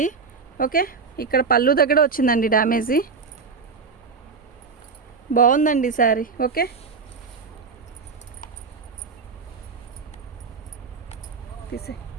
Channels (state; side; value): quieter; left; 5.0 dB